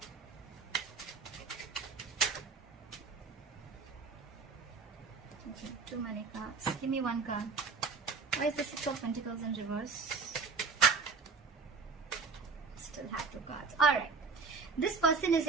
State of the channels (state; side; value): quieter; left; 4.7 dB